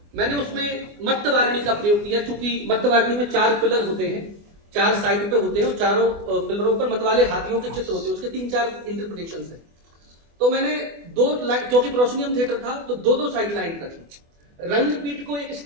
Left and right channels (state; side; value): late; left; 24 ms